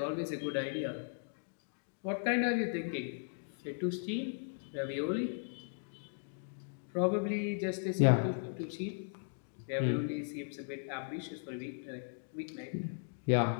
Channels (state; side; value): silent; right; digital silence